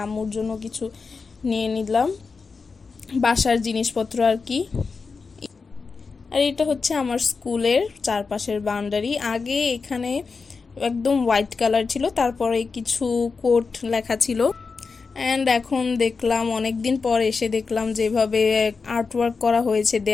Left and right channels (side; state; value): right; quieter; 4.7 dB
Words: আম্মুর জন্য কিছু নিয়ে নিলাম, বাসার জিনিসপত্র আর কি। আর এটা হচ্ছে আমার স্কুলের চারপাশের বাউন্ডারি। আগে এখানে একদম হোয়াইট কালার ছিল, তারপরে কিছু কোট লেখা ছিল, অ্যান্ড এখন দেখলাম অনেক দিন পর এসে দেখলাম যেভাবে আর্টওয়ার্ক করা হয়েছে